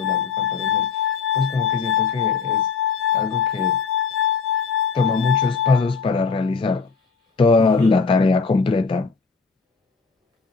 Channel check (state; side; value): quieter; right; 5.2 dB